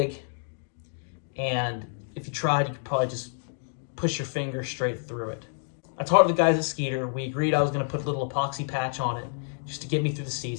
and if you tried, you could probably just push your finger straight through it. I talked to the guys at Skeeter. We agreed I was going to put a little epoxy patch on it just to get me through the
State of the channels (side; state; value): right; silent; digital silence